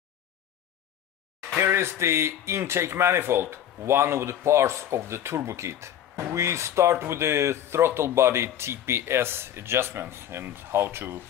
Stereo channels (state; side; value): quieter; right; 10.6 dB